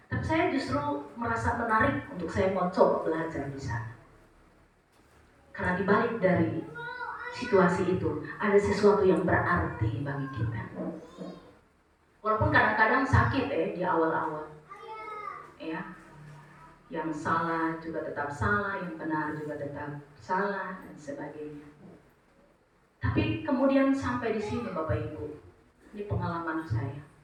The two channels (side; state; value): both; identical; correlation 1.00